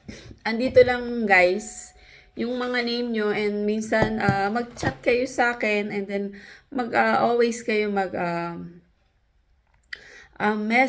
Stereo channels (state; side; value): identical; both; correlation 1.00